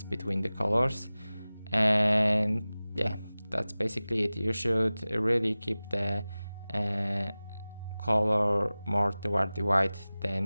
between the colors. And yeah, that's basically it. You should really keep the color more toward the white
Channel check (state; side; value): inverted; both; correlation -0.97